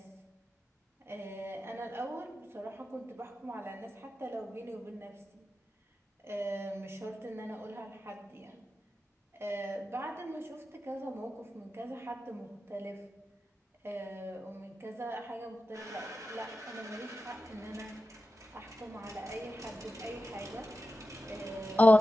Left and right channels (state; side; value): normal; both; correlation 0.92